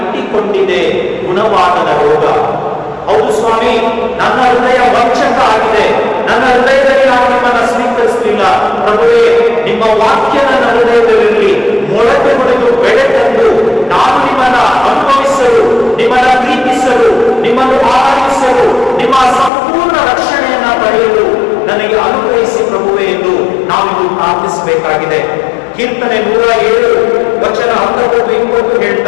ಗುಣವಾಗದ ರೋಗ. ಹೌದು ಸ್ವಾಮಿ, ನನ್ನ ಹೃದಯ ವಂಚಕ ಆಗಿದೆ, ನನ್ನ ಹೃದಯದಲ್ಲಿ ನಾನು ನಿಮ್ಮನ್ನ ಸ್ವೀಕರಿಸಲಿಲ್ಲ. ಪ್ರಭುವೇ, ನಿಮ್ಮ ವಾಕ್ಯ ನನ್ನ ಹೃದಯದಲ್ಲಿ ಮೊಳಕೆ ಹೊಡೆದು ಬೆಳೆ ತಂದು ನಾನು ನಿಮ್ಮನ್ನ ಅನುಭವಿಸಲು, ನಿಮ್ಮನ್ನ ಪ್ರೀತಿಸಲು, ನಿಮ್ಮನ್ನು ಆರಾಧಿಸಲು, ನಿಮ್ಮ ಸಂಪೂರ್ಣ ರಕ್ಷಣೆಯನ್ನ ಪಡೆಯಲು ನನಗೆ ಅನುಗ್ರಹಿಸಿ ಪ್ರಭುವೇ ಎಂದು ನಾವಿದು ಪ್ರಾರ್ಥಿಸಬೇಕಾಗಿದೆ. ಕೀರ್ತನೆ 107 ವಚನ 19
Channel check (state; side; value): drops out; right; at 19.5 s